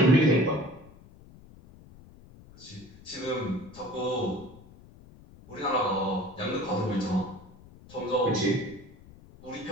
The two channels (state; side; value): noise; left; rumble, 22 dB below the sound